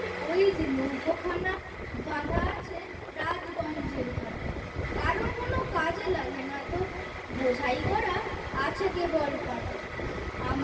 ওই যে নৌকোখানা বাঁধা আছে রাজগঞ্জের ঘাটে, কারো কোনো কাজে লাগে না তো, বোঝাই করা আছে কেবল পাটে।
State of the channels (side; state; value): both; identical; correlation 1.00